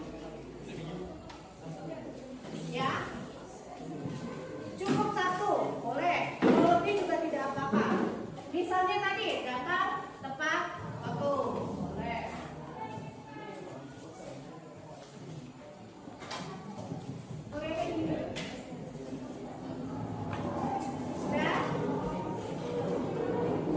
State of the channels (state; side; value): identical; both; correlation 1.00